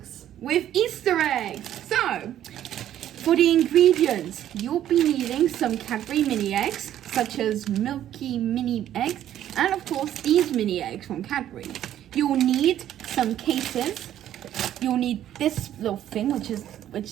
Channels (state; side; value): quieter; left; 11.5 dB